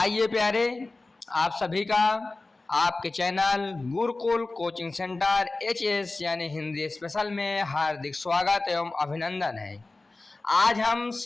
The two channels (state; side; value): quieter; right; 3.3 dB